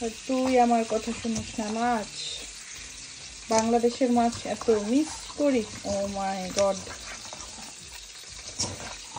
তুই আমার কথা শুনিস না। মাছ, বাংলাদেশের মাছ এত মিস করি, ও মাই গড।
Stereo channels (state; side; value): identical; both; correlation 1.00